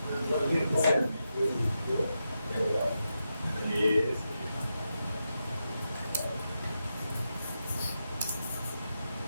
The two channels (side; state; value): both; inverted; correlation -0.87